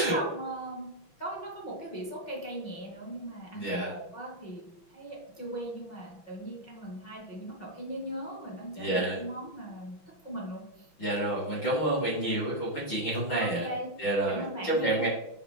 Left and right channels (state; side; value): late; right; 6.0 ms